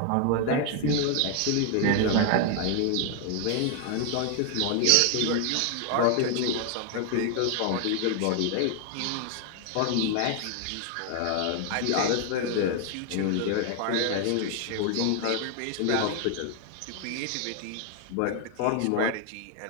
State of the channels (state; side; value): different; both; correlation 0.00